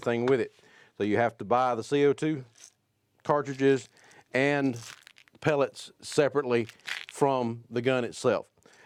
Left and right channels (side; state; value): both; identical; correlation 1.00